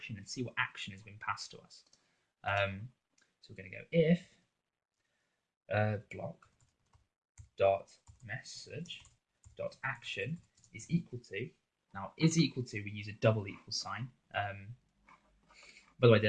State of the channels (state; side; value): identical; both; correlation 1.00